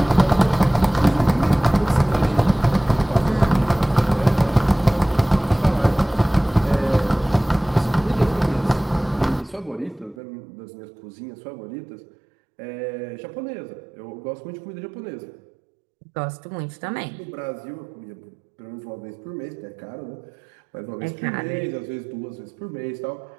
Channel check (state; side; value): drops out; left; at 10.2 s